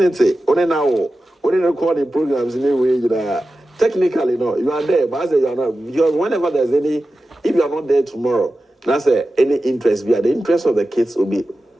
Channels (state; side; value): normal; both; correlation 0.93